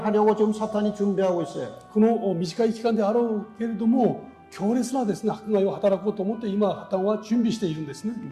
하려고 지금 사탄이 준비하고 있어요. この短い期間であろうけれども、強烈なですね、迫害を働こうと思って今、破綻は準備しているんですね。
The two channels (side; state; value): both; identical; correlation 1.00